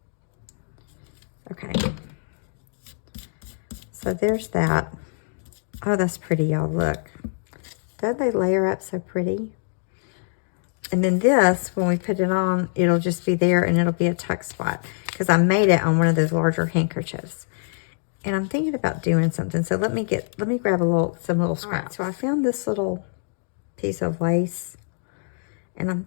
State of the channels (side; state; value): right; silent; digital silence